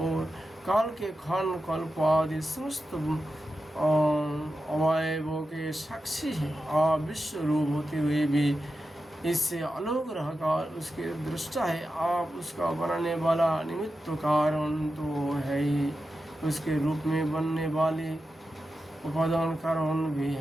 काल के खन कल्प आदि समस्त अवयवों के साक्षी है। आप विश्व रूप होते हुए भी इससे अलग रहकर उसके दृष्टा है। आप उसका बनाने वाला निमित्त कारण तो है ही, उसके रूप में बनने वाले उपादान कारण भी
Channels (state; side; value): normal; both; correlation 0.91